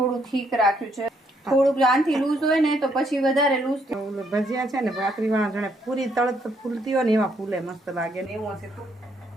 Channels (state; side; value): normal; both; correlation 0.72